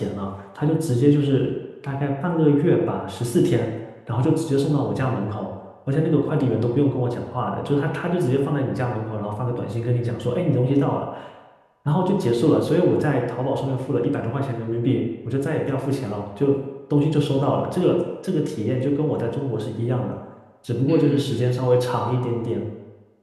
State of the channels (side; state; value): both; identical; correlation 1.00